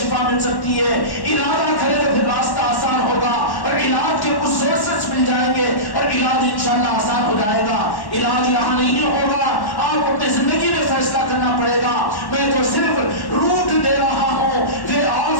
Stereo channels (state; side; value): late; right; 1.1 ms